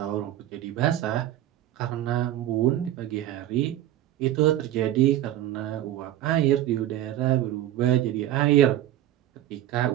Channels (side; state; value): left; quieter; 13.1 dB